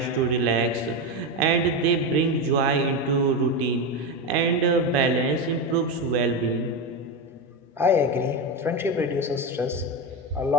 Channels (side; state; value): both; normal; correlation 0.15